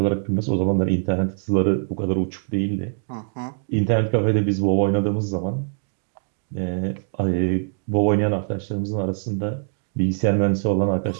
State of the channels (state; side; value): silent; left; digital silence